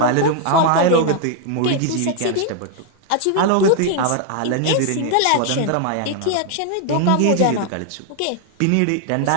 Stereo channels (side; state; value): both; different; correlation 0.00